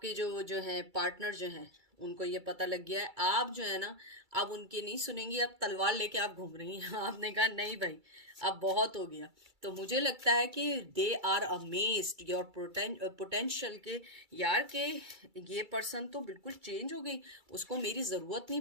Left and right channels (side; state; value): left; late; 2.3 ms